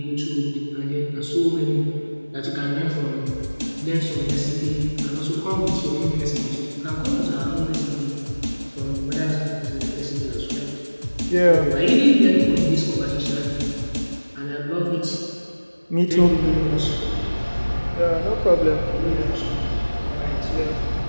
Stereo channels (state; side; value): inverted; both; correlation -1.00